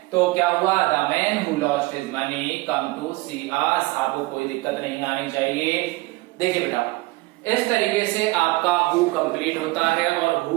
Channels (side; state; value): left; quieter; 21.8 dB